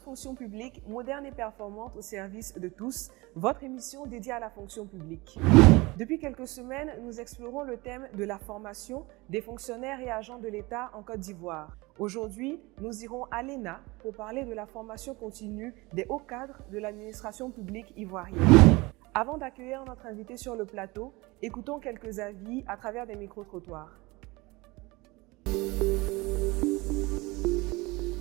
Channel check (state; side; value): quieter; left; 23.3 dB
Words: publique moderne et performante au service de tous, votre émission dédiée à la fonction publique. Depuis quelques semaines, nous explorons le thème de la formation des fonctionnaires et agents de l'État en Côte d'Ivoire. Aujourd'hui, nous irons à l'ENA pour parler de la formation continue des hauts cadres de l'administration publique ivoirienne. Avant d'accueillir notre invité sur le plateau, écoutons quelques avis à travers des micro-trottoirs.